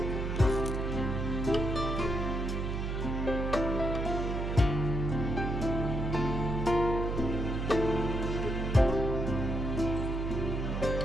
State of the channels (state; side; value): noise; right; hum, 2 dB below the sound